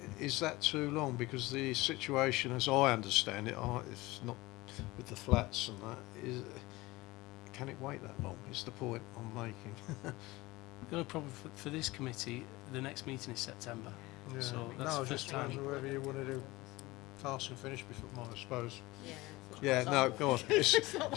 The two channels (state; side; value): quieter; right; 20.5 dB